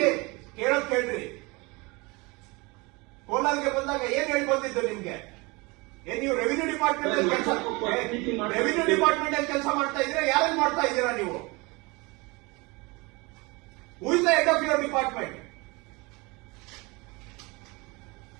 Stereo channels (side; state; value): left; quieter; 25.8 dB